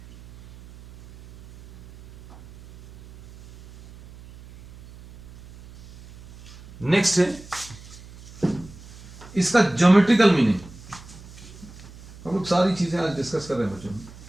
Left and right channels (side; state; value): right; noise; hum, 19 dB below the sound